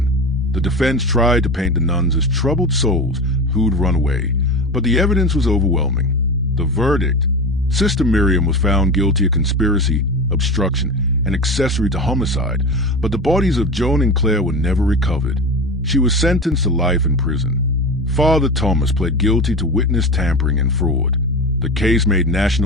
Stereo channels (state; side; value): normal; both; correlation 0.27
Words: The defense tried to paint the nuns as troubled souls who'd run away, but the evidence was overwhelming. The verdict: Sister Miriam was found guilty of conspiracy, obstruction, and accessory to homicide, but the bodies of Joan and Claire were never recovered. She was sentenced to life in prison. Father Thomas pled guilty to witness tampering and fraud. The case made